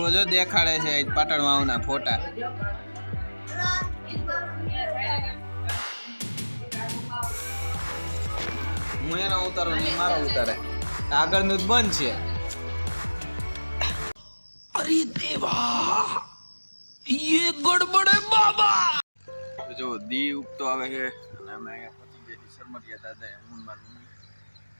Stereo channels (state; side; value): inverted; both; correlation -1.00